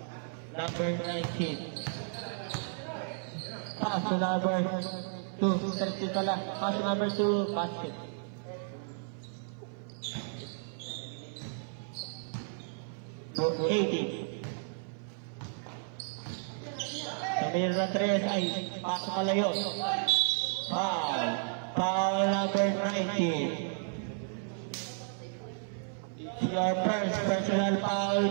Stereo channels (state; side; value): silent; left; 56 dB below the other